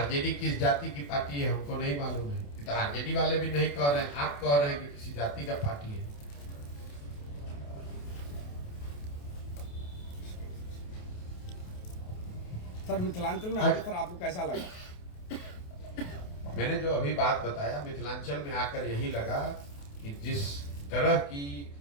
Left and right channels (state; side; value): late; right; 28 ms